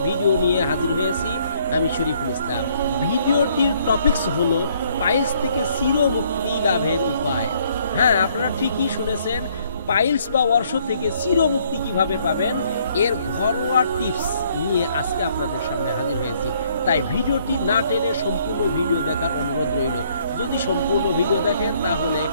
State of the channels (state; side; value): inverted; both; correlation -0.66